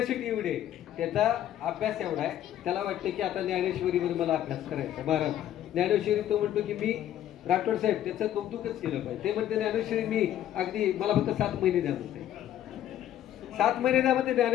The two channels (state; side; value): quieter; right; 11.7 dB